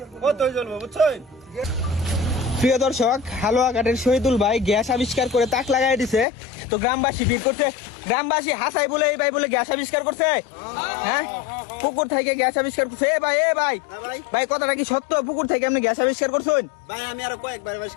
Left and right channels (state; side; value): drops out; right; at 6.2 s